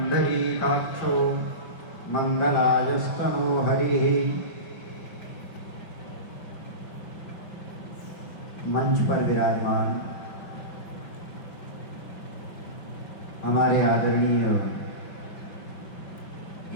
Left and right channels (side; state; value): right; late; 5.6 ms